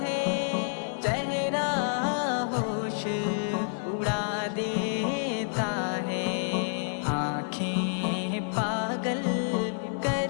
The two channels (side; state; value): right; silent; digital silence